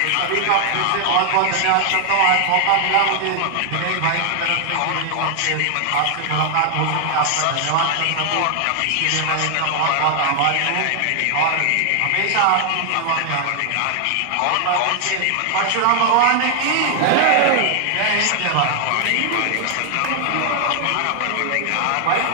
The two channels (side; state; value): both; different; correlation 0.00